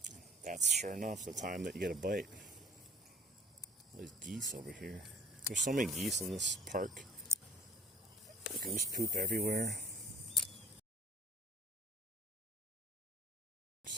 That's sure enough the time that you get a bite. There's geese over here. There's so many geese in this park. Goose poop everywhere.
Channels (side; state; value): both; normal; correlation 0.51